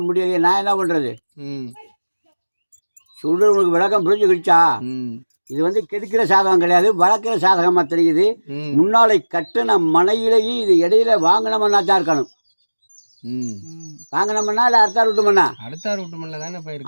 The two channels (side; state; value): both; inverted; correlation -1.00